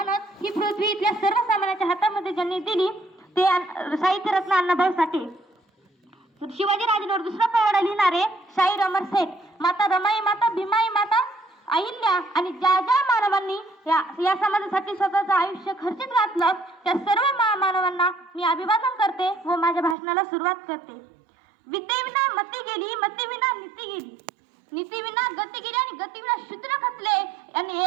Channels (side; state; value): left; drops out; at 20.0 s